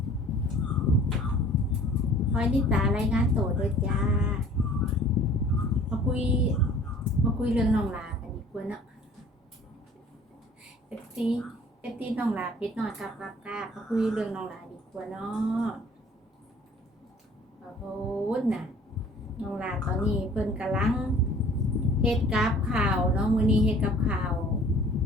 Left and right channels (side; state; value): both; normal; correlation 0.51